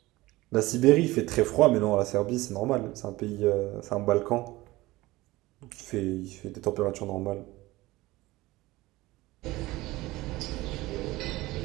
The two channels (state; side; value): quieter; left; 19.2 dB